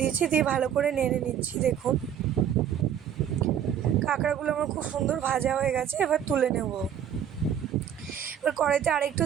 দিয়েছি, দিয়ে ভালো করে নেড়ে নিচ্ছি। দেখুন কাঁকড়াগুলো আমার খুব সুন্দর ভাজা হয়ে গেছে, এবার তুলে নেব। এবার কড়াইতে আরেকটু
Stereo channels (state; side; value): quieter; left; 9.2 dB